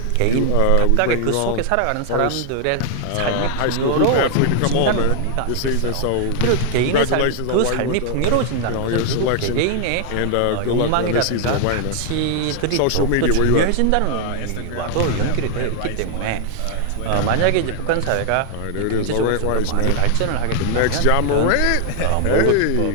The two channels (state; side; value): different; both; correlation 0.00